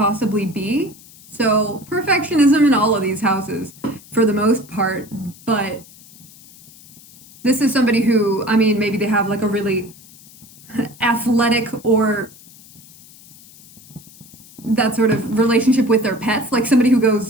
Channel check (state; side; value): noise; left; hiss, 23 dB below the sound